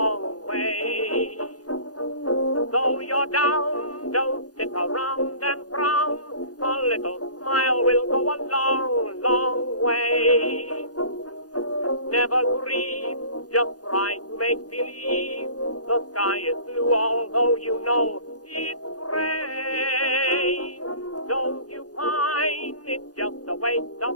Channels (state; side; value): late; right; 0.68 ms